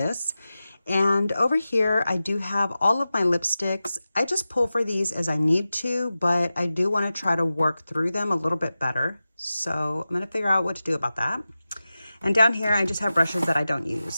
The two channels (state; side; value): inverted; both; correlation -0.94